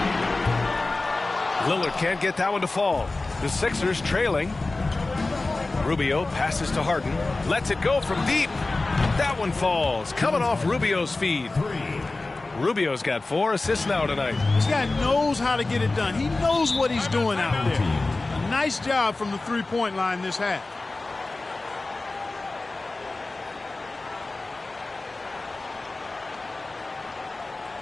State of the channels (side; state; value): right; quieter; 3.2 dB